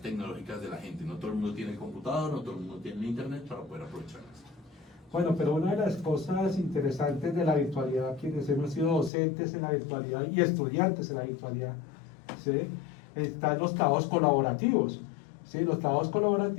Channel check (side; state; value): right; drops out; at 9.1 s